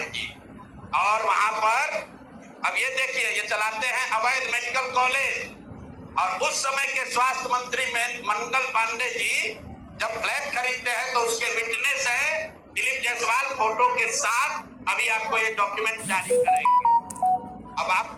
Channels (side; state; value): both; identical; correlation 1.00